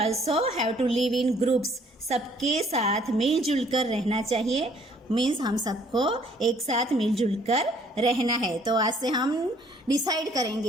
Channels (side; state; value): both; normal; correlation 0.61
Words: have to live in groups. सबके साथ मिलजुल कर रहना चाहिए, means हम सबको एक साथ मिलजुल कर रहना है। तो आज से हम डिसाइड